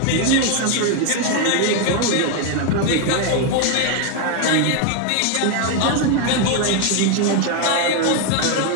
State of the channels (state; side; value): different; both; correlation 0.01